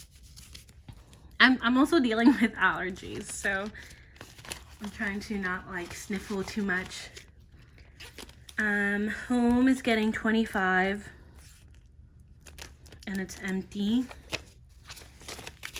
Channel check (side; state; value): both; identical; correlation 1.00